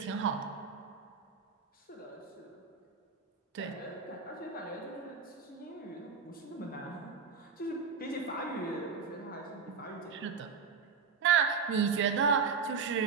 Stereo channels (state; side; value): quieter; left; 5.7 dB